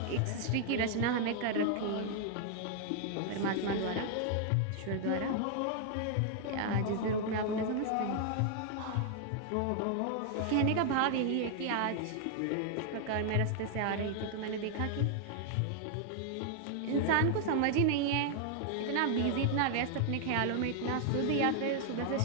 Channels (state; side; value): different; both; correlation 0.00